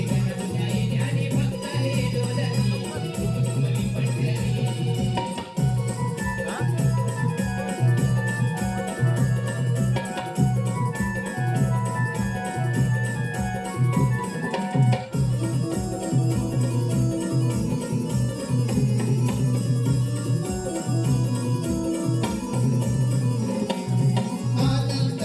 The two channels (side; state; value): both; identical; correlation 1.00